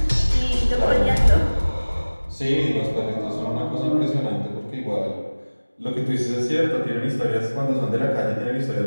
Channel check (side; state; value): both; inverted; correlation -1.00